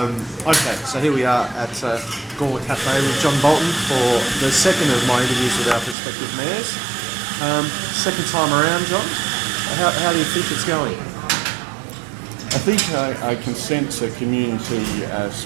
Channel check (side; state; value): left; drops out; at 6.0 s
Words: Okay, so here we are at Gawler Cafe with John Bolton for the second of my interviews with our prospective mayors. Second time around, John. How do you think it's going? I think I can sense a community